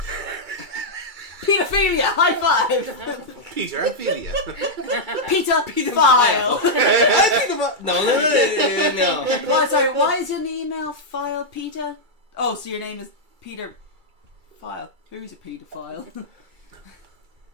Pedophilia! High five! Peter, Ophelia. Peter file! no. Well, sorry, why is your email file Peter? Oh, so your name is Peter File. Who's a pedophile?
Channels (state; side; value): late; left; 2.3 ms